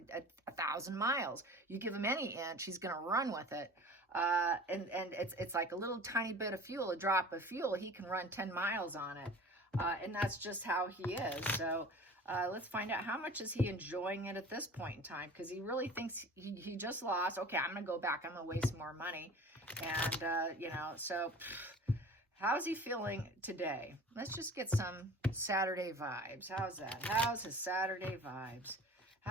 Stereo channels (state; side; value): normal; both; correlation 0.41